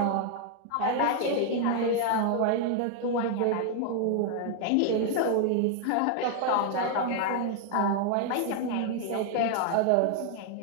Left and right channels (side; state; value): both; different; correlation 0.00